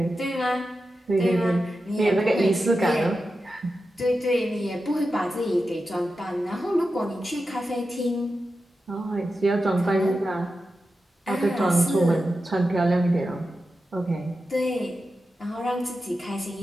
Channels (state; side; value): normal; both; correlation 0.91